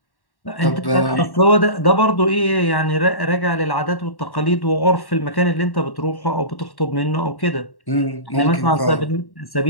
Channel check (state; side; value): late; right; 1.1 ms